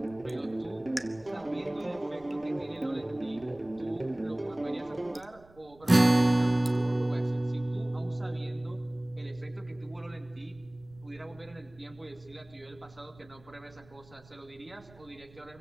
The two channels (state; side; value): noise; right; rumble, 24 dB below the sound